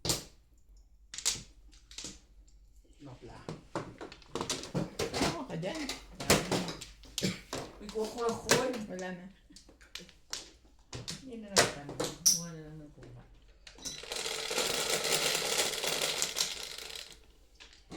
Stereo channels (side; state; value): both; identical; correlation 1.00